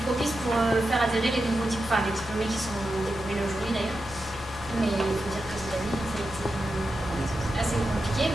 propice pour faire adhérer les nouveaux diplômés, les diplômés qui sont développés aujourd'hui d'ailleurs. Mais il faut dire que cette année, ça a été assez compliqué.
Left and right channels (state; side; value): normal; both; correlation 0.89